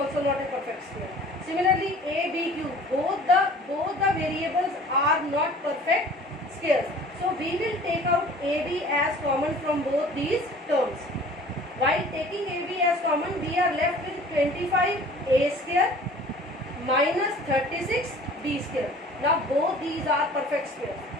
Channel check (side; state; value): both; normal; correlation 0.48